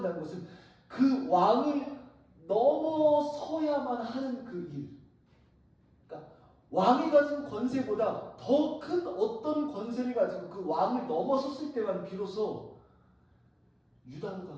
것은 그 왕을 넘어서야만 하는 그 일, 그러니까 왕이 가진 권세보다 더 큰 어떤 권세를 가지고 그 왕을 넘어섰을 때만 비로소 유다로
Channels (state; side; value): identical; both; correlation 1.00